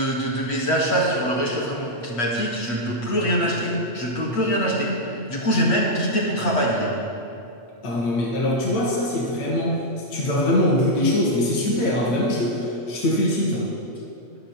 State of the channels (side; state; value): right; late; 8.3 ms